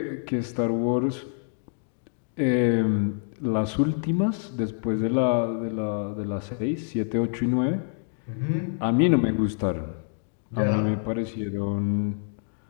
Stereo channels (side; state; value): right; silent; digital silence